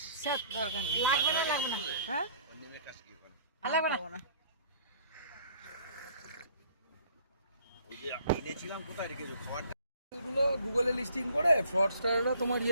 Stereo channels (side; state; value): both; inverted; correlation -0.57